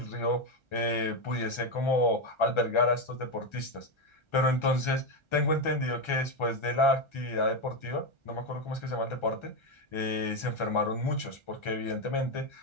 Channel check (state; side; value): late; right; 1.3 ms